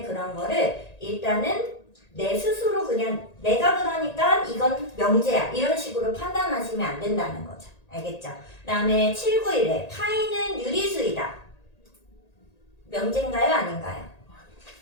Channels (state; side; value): late; right; 1.8 ms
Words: 그런 거를 일단은 내 스스로 그냥 내가 그러니까 이건 명제야. 이런 식으로 판단하시면 안 된다는 거죠. 알겠죠? 그 다음에 791에 파이는 유리수이다. 명제인가요? 아닌가요?